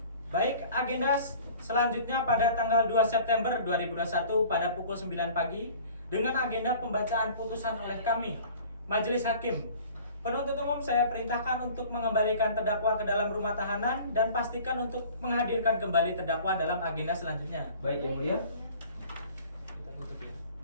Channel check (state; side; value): inverted; both; correlation -0.46